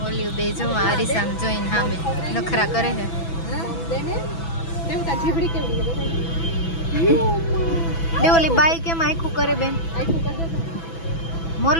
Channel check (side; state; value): right; late; 6.0 ms